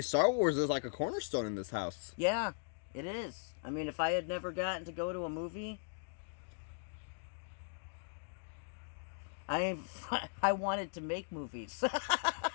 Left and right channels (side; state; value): right; silent; digital silence